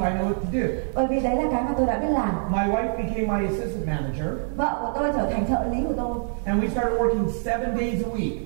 I know what to do. Bởi vì đấy là cái mà tôi đã biết làm. My wife became my assistant manager Vợ của tôi trở thành trợ lý của tôi. and we started working 7 days a week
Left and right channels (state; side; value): silent; left; digital silence